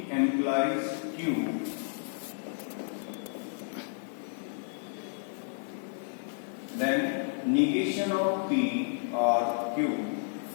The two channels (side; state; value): right; silent; digital silence